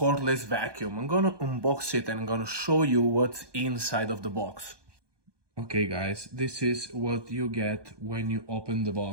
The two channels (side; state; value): left; late; 1.2 ms